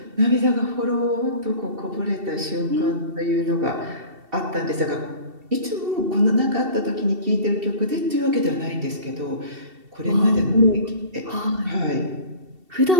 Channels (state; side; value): late; left; 2.7 ms